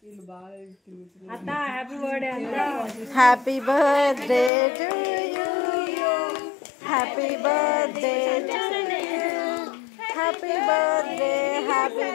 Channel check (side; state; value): right; drops out; at 4.5 s